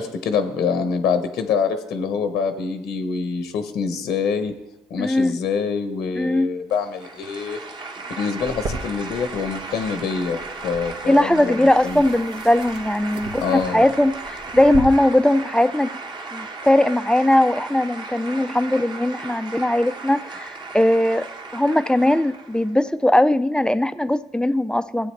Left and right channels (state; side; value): normal; both; correlation 0.89